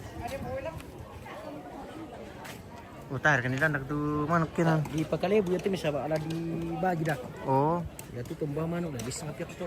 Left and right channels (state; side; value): identical; both; correlation 1.00